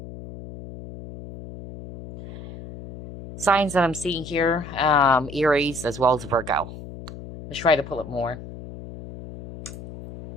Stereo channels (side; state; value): left; noise; hum, 13 dB below the sound